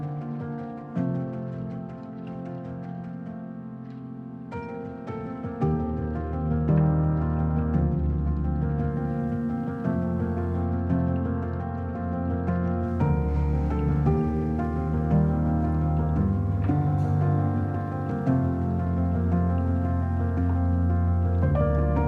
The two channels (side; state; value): both; identical; correlation 1.00